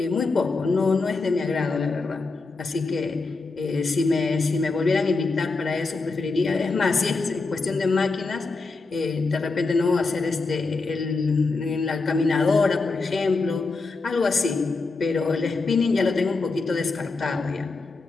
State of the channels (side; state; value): right; quieter; 3.9 dB